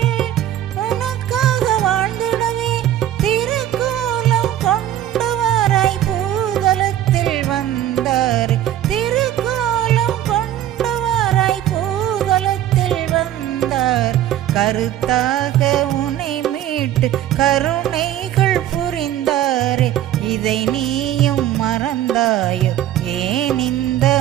கருத்தாக உனை மீட்டு கருணைகள் புரிந்தாரே, இதை நீயும் மறந்தாயோ ஏன் இந்த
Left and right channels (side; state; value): left; quieter; 12.0 dB